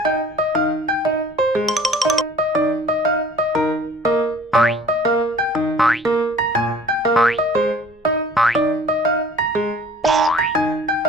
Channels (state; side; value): normal; both; correlation 0.50